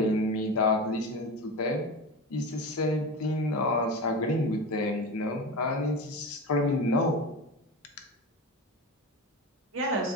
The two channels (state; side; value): normal; both; correlation 0.26